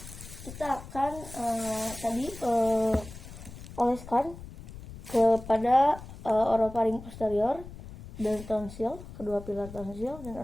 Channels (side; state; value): left; noise; rumble, 14 dB below the sound